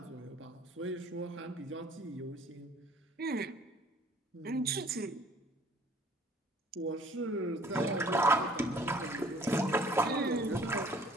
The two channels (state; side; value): normal; both; correlation 0.55